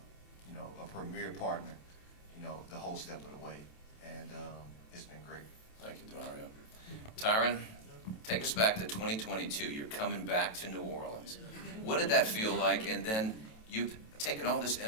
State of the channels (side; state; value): right; late; 27 ms